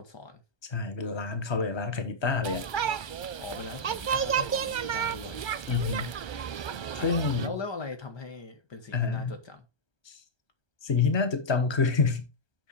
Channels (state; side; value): late; right; 1.3 ms